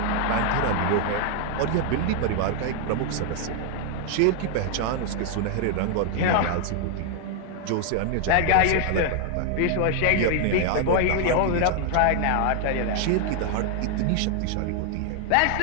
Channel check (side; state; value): both; different; correlation 0.00